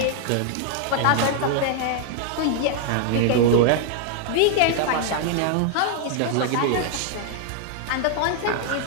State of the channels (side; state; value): both; different; correlation 0.00